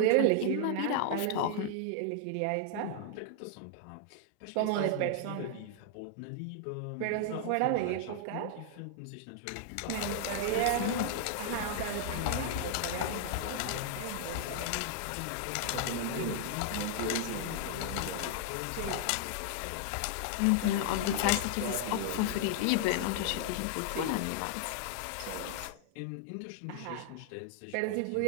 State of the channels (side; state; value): both; different; correlation -0.01